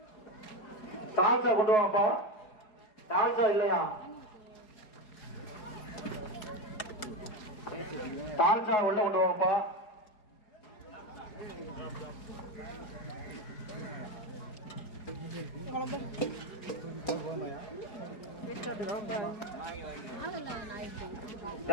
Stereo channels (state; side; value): late; right; 4.8 ms